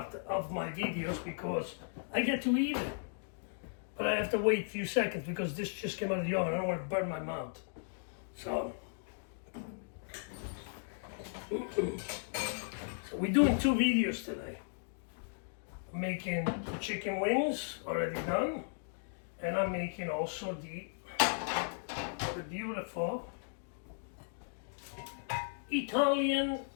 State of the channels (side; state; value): right; silent; digital silence